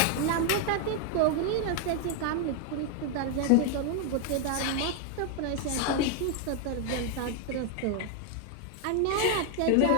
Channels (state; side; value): different; both; correlation 0.00